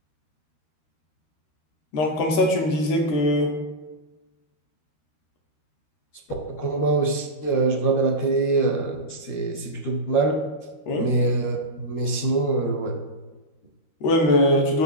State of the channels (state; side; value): late; right; 13 ms